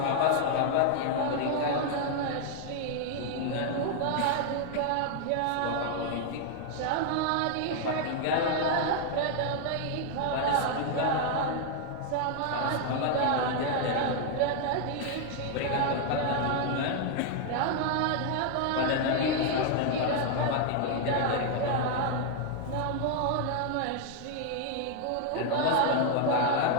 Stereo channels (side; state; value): both; different; correlation 0.00